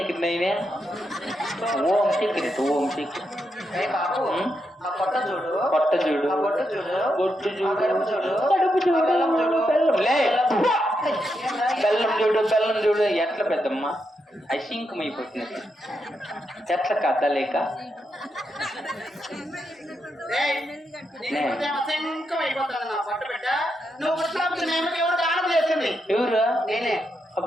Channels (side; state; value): both; normal; correlation 0.83